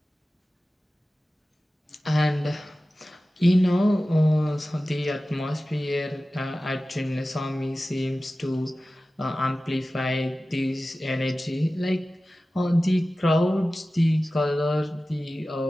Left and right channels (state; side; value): normal; both; correlation 0.96